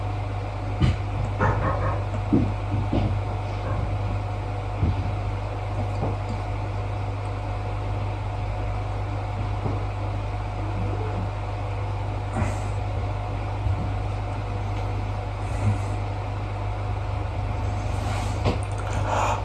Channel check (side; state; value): both; identical; correlation 1.00